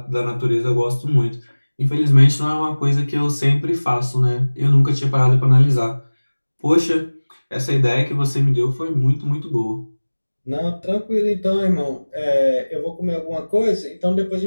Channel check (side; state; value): both; inverted; correlation -1.00